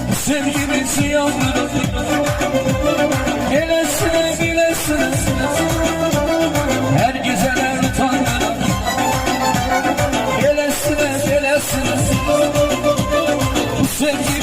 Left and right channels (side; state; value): both; identical; correlation 1.00